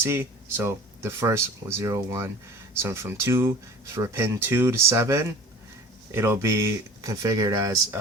So the first was 0, 1. So from 2, for pin 2 to 7, it'll be configured as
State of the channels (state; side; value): normal; both; correlation 0.42